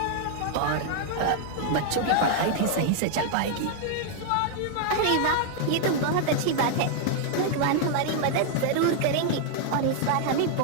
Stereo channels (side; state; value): both; different; correlation 0.00